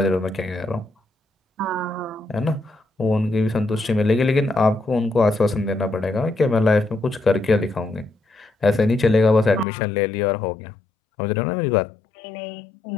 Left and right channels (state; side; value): drops out; right; at 9.7 s